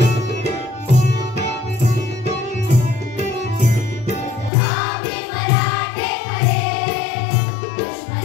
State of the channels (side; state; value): right; drops out; at 4.5 s